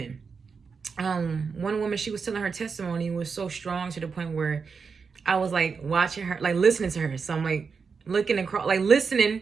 One woman, she was telling her testimony was so strong to the point where I was like watching her, like listening to her. So I'm like looking across, like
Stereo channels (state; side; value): quieter; left; 5.4 dB